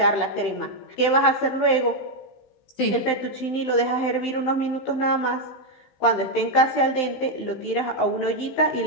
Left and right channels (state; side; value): late; right; 15 ms